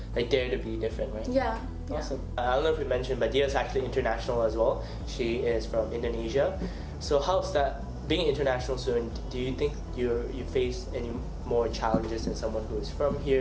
like dare to be different, right? Yeah. Awesome. I don't know if we mentioned, but Dhia is actually international as well. She is from Indonesia. So how's that being an international student? Do you think you face any more challenges than someone who is from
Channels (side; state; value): both; identical; correlation 1.00